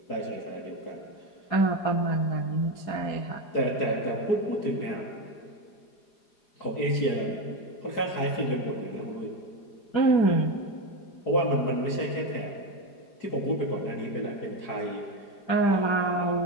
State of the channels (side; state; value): right; late; 4.9 ms